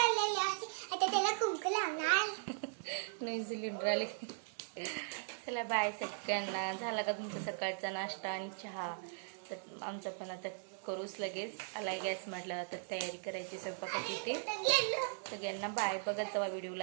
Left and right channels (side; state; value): left; silent; digital silence